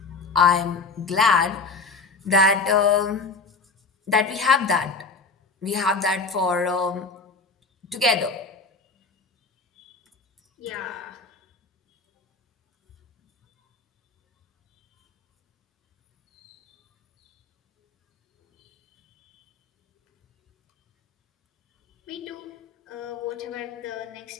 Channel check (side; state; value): right; quieter; 4.2 dB